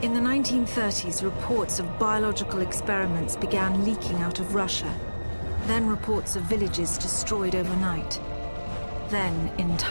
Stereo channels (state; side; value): inverted; both; correlation -1.00